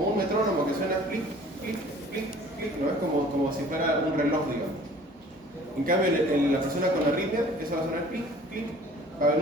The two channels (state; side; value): normal; both; correlation 0.50